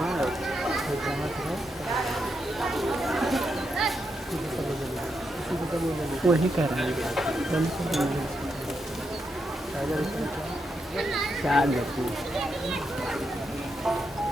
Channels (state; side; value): normal; both; correlation 0.83